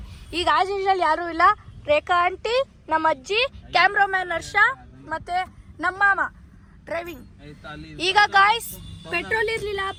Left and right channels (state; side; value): identical; both; correlation 1.00